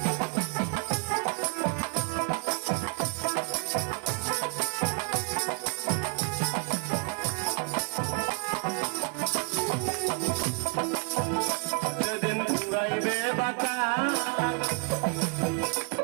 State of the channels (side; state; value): left; quieter; 37.3 dB